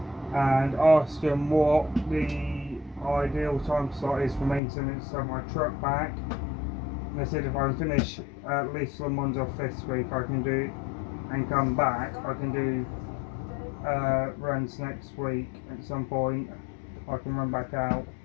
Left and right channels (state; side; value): drops out; right; at 4.6 s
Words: and asked them what the ideal time slot is for maintenance of my truck back. And they said if I can finish at least some ones off this week, I can do and come back. I can do runs next week at some point. I can run back out,